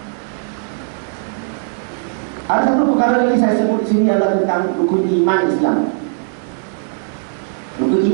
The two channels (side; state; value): left; silent; digital silence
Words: Ada satu perkara lagi saya sebut di sini adalah tentang rukun iman Islam. Rukun